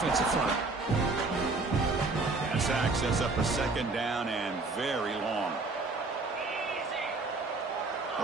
front. That sack sets up a second down and very long.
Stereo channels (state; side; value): quieter; left; 3.6 dB